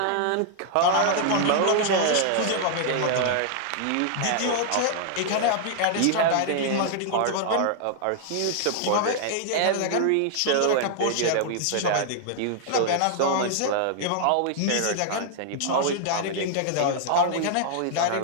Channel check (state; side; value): different; both; correlation -0.01